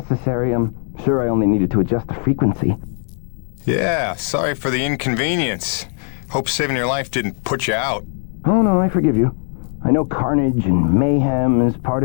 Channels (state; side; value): silent; right; 60 dB below the other